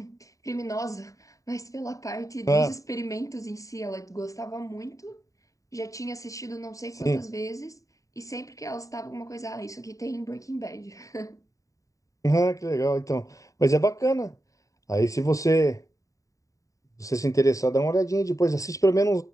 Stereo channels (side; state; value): right; late; 0.16 ms